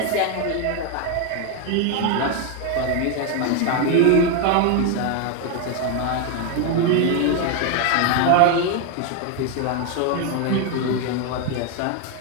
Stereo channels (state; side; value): different; both; correlation 0.01